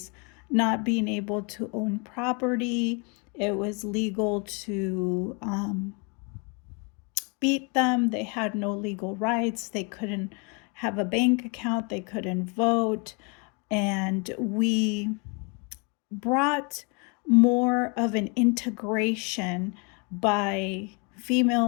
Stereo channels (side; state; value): right; quieter; 33.3 dB